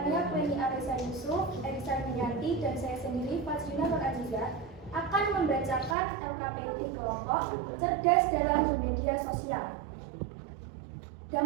Pleni Arisa Yusuf, Erisa Yanti, dan saya sendiri Fazlina Nur Aziza akan membacakan LKPD kelompok cerdas dalam bermedia sosial.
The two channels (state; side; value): drops out; left; at 6.0 s